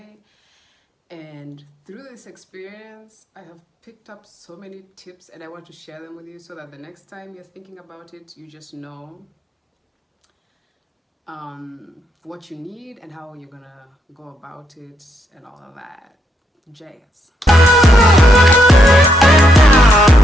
And through this experience, I have picked up so many tips and I want to share them with you so that the next time you're thinking about it, you just know what you need and how you're gonna go about it and all of that jazz.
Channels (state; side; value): normal; both; correlation 0.78